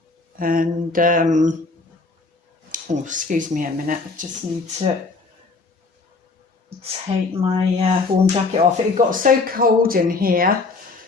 And, oh, excuse me a minute, I just need to take my warm jacket off. It got so cold in here.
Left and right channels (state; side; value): quieter; right; 3.9 dB